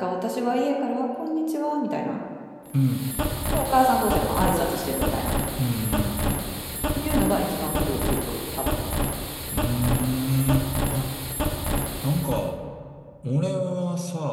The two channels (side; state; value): both; identical; correlation 1.00